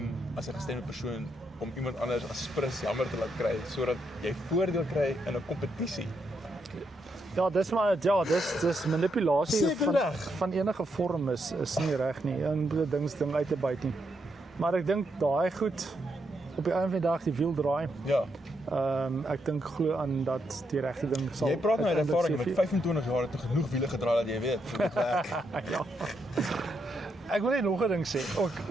as 'n gestremde persoon om iemand anders as prins jammer te laat kry sodat jy voordeel kry in 'n kompetisie. Ja, dis manipulasie van enige vorm is nie reg nie. En ding uit te byt nie. Maar ek dink daai goed op die einde van die dag die wiel draai. Ja. Ek dink glo aan dat die regte ding sal. Jy praat nou uit ervaring met 25 jaar het genoeg wiele gedraai dat jy weet hoe dit werk. Ja. Ek wil net nog 'n ding sê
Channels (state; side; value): normal; both; correlation 0.80